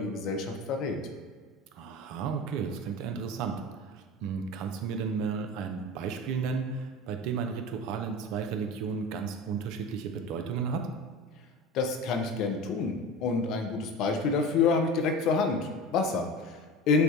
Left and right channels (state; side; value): normal; both; correlation 0.31